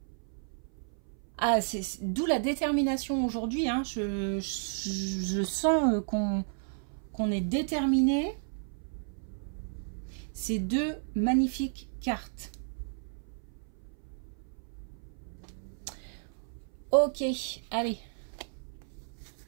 Ah, c'est d'où la détermination aujourd'hui. Hein. Je sens qu'on est déterminé. Ces deux magnifiques cartes. Ok, allez.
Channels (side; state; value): left; silent; 56 dB below the other